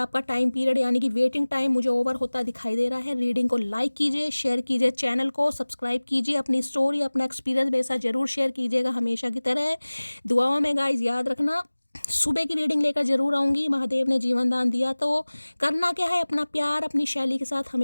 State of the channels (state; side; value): inverted; both; correlation -1.00